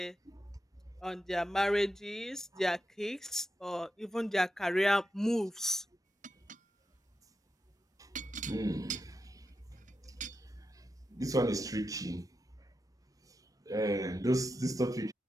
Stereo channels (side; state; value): both; normal; correlation 0.88